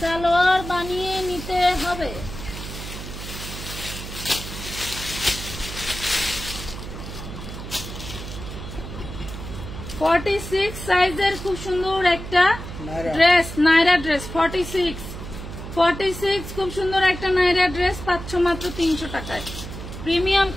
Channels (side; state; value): right; noise; hum, 10 dB below the sound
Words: বানিয়ে নিতে হবে। ফর্টি 46 সাইজের খুব সুন্দর একটা ড্রেস, নাইরা ড্রেস, 46 খুব সুন্দর একটা নাইরা ড্রেস পাচ্ছ মাত্র 300 টাকায়, প্রিমিয়াম